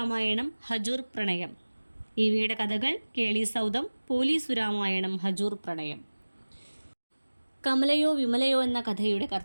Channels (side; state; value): both; inverted; correlation -1.00